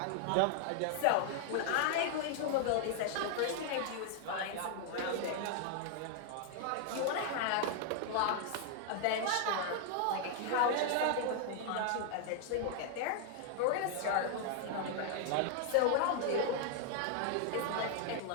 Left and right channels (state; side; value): different; both; correlation 0.00